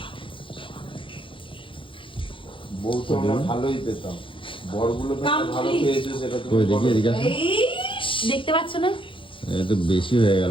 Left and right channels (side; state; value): right; late; 0.25 ms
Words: বউ তো আমরা ভালোই পেতাম, বরগুলো ভালো পেয়েছো সেটা তুমি কই দেখি বলো। এদিকে আসো। এই দেখতে পাচ্ছ না? এ তো বেশি হয়ে